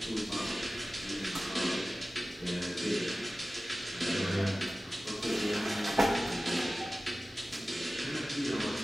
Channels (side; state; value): both; normal; correlation 0.96